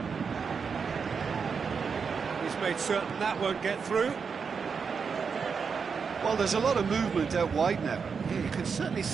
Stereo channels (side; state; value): left; quieter; 5.8 dB